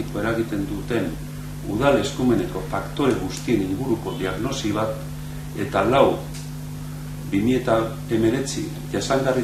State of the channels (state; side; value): identical; both; correlation 1.00